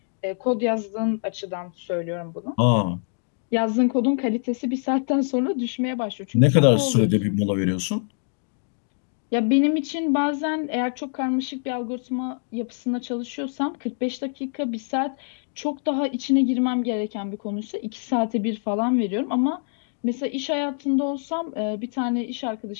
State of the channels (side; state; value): right; silent; 60 dB below the other